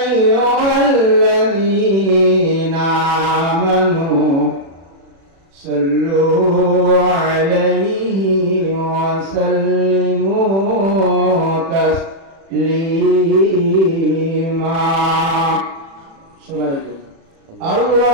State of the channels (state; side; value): late; left; 36 ms